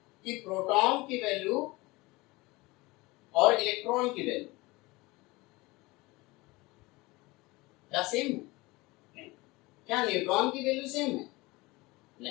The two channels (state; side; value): quieter; right; 22.3 dB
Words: कि प्रोटॉन की वैल्यू और इलेक्ट्रॉन की वैल्यू क्या सेम है? नहीं। क्या न्यूट्रॉन की वैल्यू सेम है?